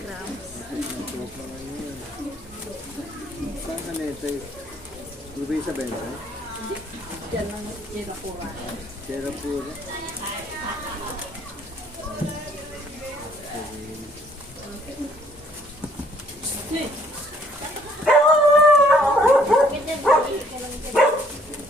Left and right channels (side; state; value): both; normal; correlation 0.63